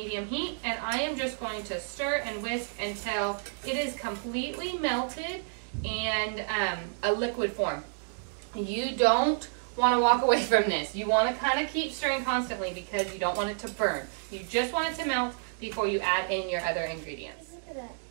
heat, and I am just going to stir and whisk until it is completely melted and a liquid form. You don't want to walk away from this. You want to kind of keep stirring constantly because you don't want it to burn. You just want it to melt before you add in your other ingredients.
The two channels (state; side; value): silent; left; digital silence